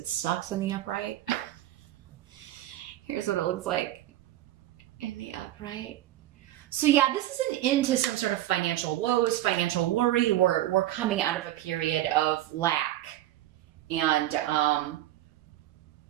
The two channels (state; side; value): quieter; left; 14.1 dB